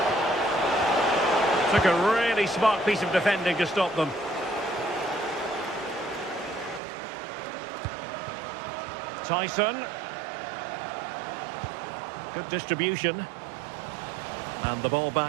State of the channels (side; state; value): left; drops out; at 6.8 s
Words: Took a really smart piece of defending to stop them. Tyson. Good distribution. And the ball